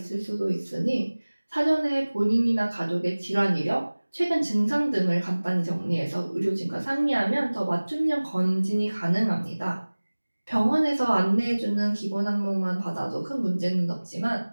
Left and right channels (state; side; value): inverted; both; correlation -1.00